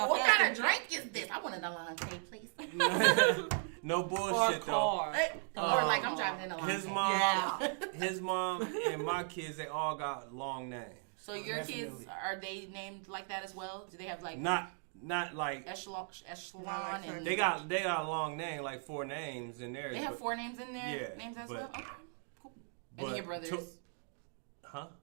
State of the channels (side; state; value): left; silent; 53 dB below the other